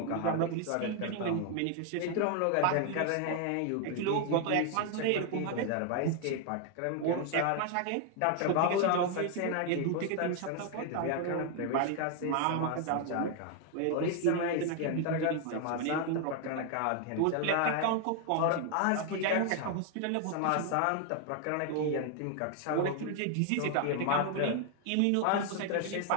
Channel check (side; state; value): both; different; correlation 0.00